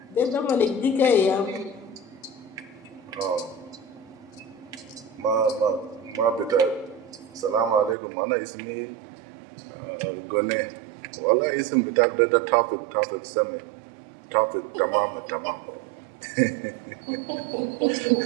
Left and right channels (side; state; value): left; drops out; at 8.0 s